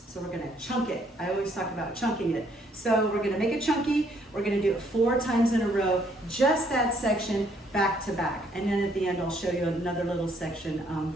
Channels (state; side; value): normal; both; correlation 0.67